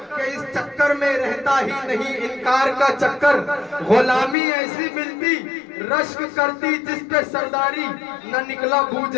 कि इस चक्कर में रहता ही नहीं इनकार का चक्कर। गुलामी ऐसी मिलती रश्क करती जिस पे सरदारी, न निकला बू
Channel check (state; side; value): drops out; right; at 4.4 s